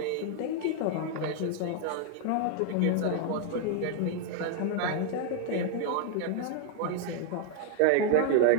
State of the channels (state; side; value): different; both; correlation 0.00